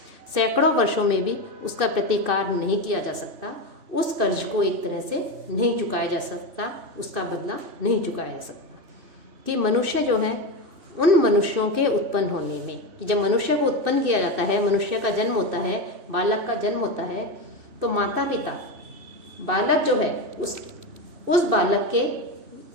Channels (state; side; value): late; left; 2.6 ms